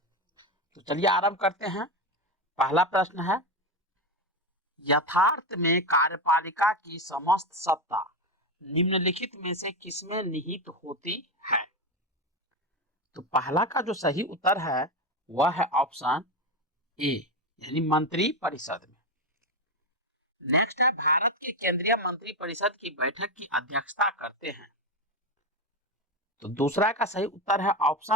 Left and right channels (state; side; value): normal; both; correlation 0.13